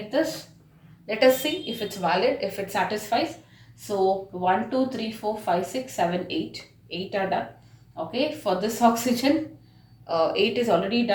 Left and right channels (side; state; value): both; identical; correlation 1.00